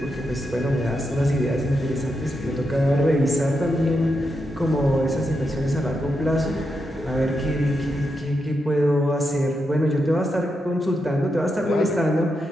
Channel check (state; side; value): normal; both; correlation 0.85